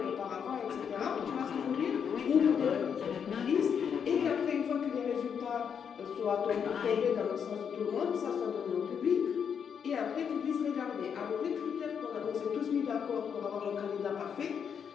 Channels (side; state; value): right; quieter; 7.3 dB